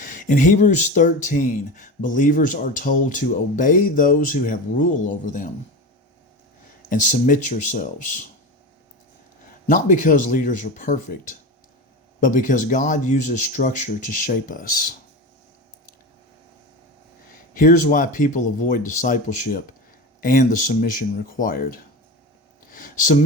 In Hebrews 13, believers are told to obey those who have rule over them and submit yourselves. Not because leaders are perfect, but because God uses structure to shape us. Here's why people avoid discipleship and the submission required.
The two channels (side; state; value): both; normal; correlation 0.25